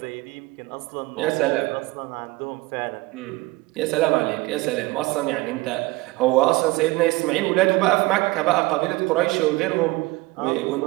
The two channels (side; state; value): left; quieter; 21.5 dB